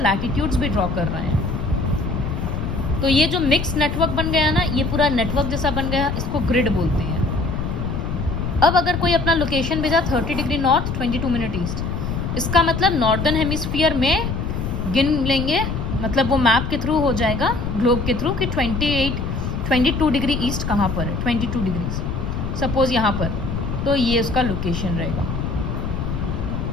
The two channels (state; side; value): noise; left; rumble, 3 dB below the sound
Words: भी ड्रॉ कर रहे हैं। तो ये जो मिक्स नेटवर्क बन गया ना, ये पूरा नेटवर्क जैसा बन गया, इसको ग्रिड बोलते हैं। अब अगर कोई अपना लोकेशन भेजा 30 डिग्री नॉर्थ, 22 मिनट ईस्ट, इसका मतलब नॉर्दर्न हेमिस्फीयर में गिन लेंगे, मतलब वो मैप के थ्रू हो जाएगा, ग्लोब के थ्रू, कि 22 डिग्री ईस्ट कहाँ पर है, 22 डिग्री सपोज यहाँ पर, तो ये उसका लोकेशन रहेगा।